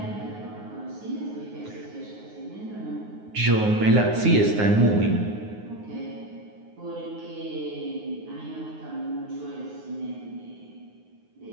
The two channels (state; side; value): late; left; 9.6 ms